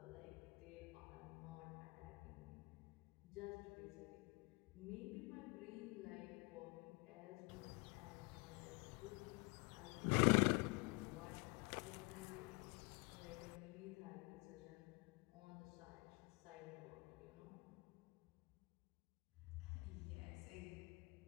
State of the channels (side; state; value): right; quieter; 29.1 dB